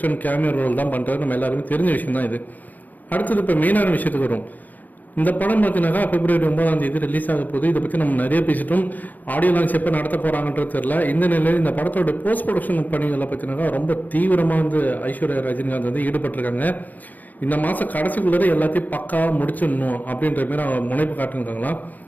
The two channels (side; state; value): right; late; 0.082 ms